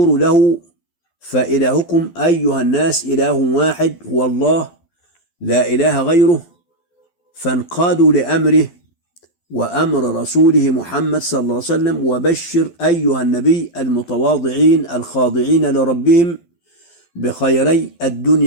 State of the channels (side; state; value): right; late; 12 ms